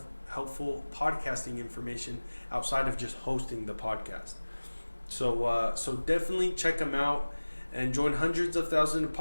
helpful podcasting information outside of just hosting the podcast. So definitely check them out and join hundreds of thousands of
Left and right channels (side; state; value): both; inverted; correlation -1.00